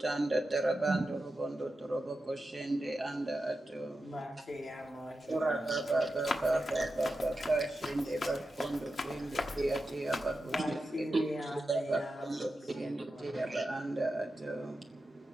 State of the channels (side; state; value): both; normal; correlation 0.90